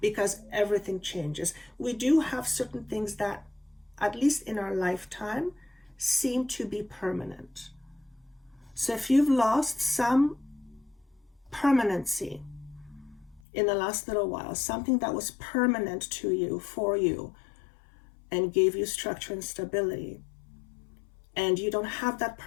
because everything changes, we do have certain things that, at least in our lifetime, seem to be permanent. So if you've lost some permanency in the last little while, something that was permanent to you, for you, and gave you structure and stability, and you don't have that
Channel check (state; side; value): drops out; right; at 13.4 s